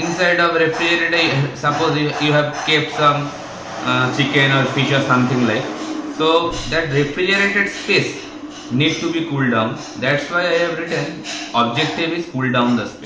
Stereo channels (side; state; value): both; identical; correlation 1.00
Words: of refrigerator, suppose you have kept some chicken or fish or something like, so that refrigerated space need to be cooled down. That's why I have written objective is cool down the